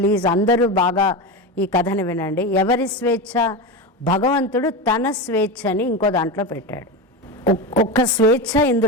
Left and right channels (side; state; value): both; normal; correlation 0.19